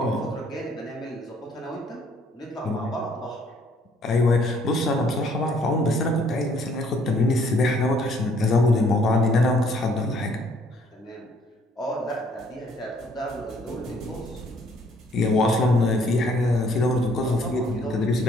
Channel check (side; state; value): both; normal; correlation 0.63